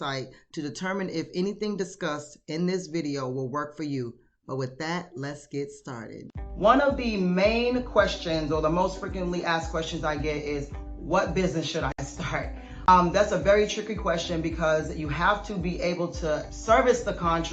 to determine if anything discussed in this video will work for you. But with that, let's get started. One of the main questions or the most frequently asked questions I get is, what business should I start? That's a very tricky question because you have to be able to service the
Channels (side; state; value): both; identical; correlation 1.00